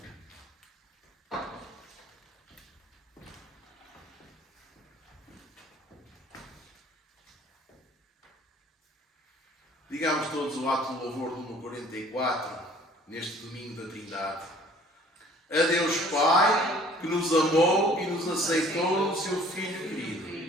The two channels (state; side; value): normal; both; correlation 0.54